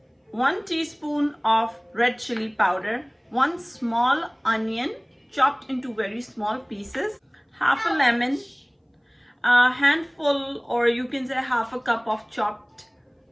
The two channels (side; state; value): both; identical; correlation 1.00